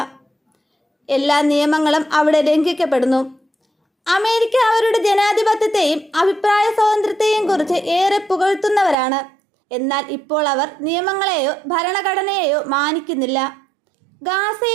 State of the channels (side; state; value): left; drops out; at 9.0 s